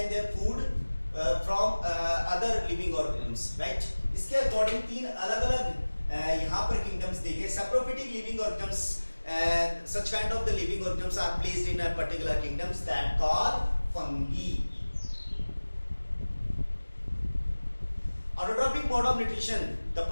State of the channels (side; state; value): both; inverted; correlation -1.00